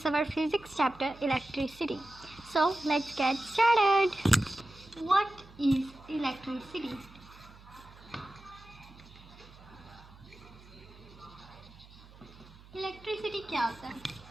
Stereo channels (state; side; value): noise; right; hum, 21 dB below the sound